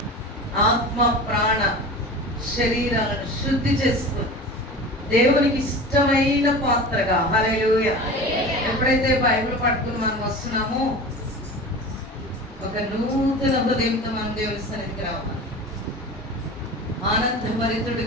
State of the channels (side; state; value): both; normal; correlation 0.34